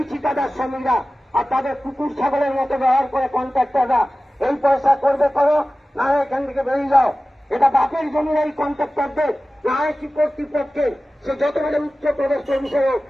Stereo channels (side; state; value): both; normal; correlation 0.96